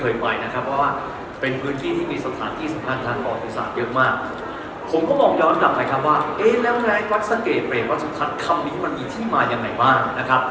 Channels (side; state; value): both; identical; correlation 1.00